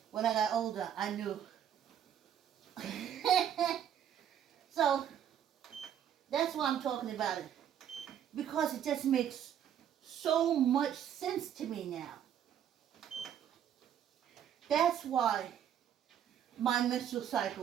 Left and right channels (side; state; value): left; quieter; 9.7 dB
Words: When I got older, I knew. So, that's why I'm talking about it. Because it just makes so much sense to me now. That's why my menstrual